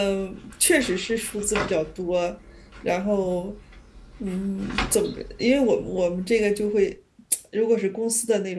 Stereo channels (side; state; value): both; identical; correlation 1.00